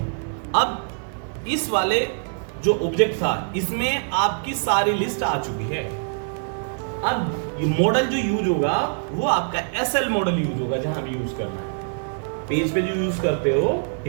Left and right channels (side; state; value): left; silent; digital silence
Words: अब इस वाले जो ऑब्जेक्ट था, इसमें आपकी सारी लिस्ट आ चुकी है। अब ये मॉडल जो यूज होगा वो आपका SL मॉडल यूज होगा, जहां भी यूज करना है। पेज पे जो यूज करते हो,